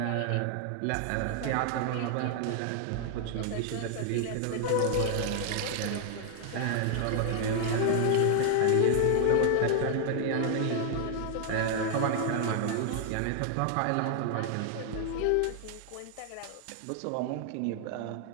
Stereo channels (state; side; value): different; both; correlation 0.00